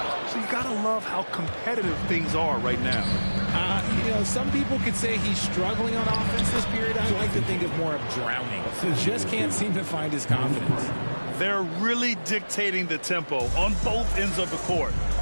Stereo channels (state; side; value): inverted; both; correlation -1.00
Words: So you got to love how competitive things are right now. You know, some people could say he's struggling on offense this period. I like to think of more of drowning. Just can't seem to find his confidence. They're really dictating the tempo on both ends of the court.